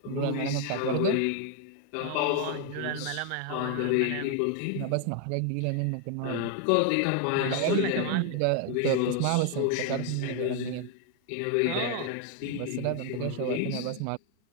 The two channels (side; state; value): both; different; correlation 0.01